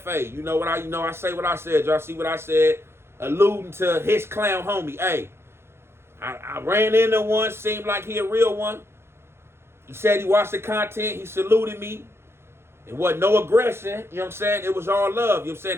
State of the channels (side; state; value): left; late; 0.12 ms